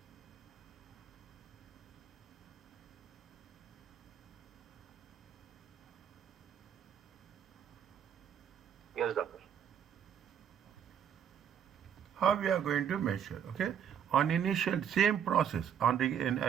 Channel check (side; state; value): left; quieter; 8.6 dB